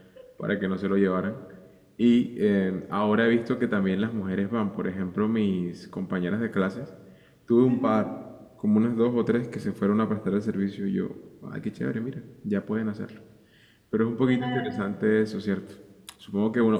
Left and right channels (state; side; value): identical; both; correlation 1.00